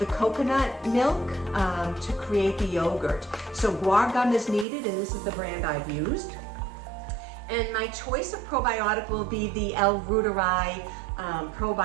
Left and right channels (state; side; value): drops out; left; at 4.7 s